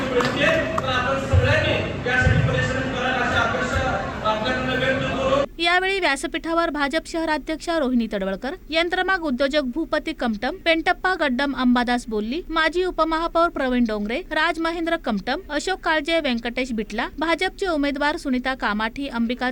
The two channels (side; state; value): both; identical; correlation 1.00